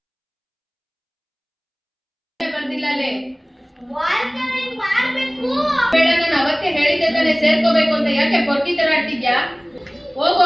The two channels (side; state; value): both; identical; correlation 1.00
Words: ಅವತ್ತೇ ಹೇಳಿದ್ದೆ ತಾನೆ ಸೇರ್ಕೋಬೇಕು ಅಂತ. ಯಾಕೆ ಪೊಟ್ಟಿ ತರ ಆಡ್ತಿದ್ಯಾ?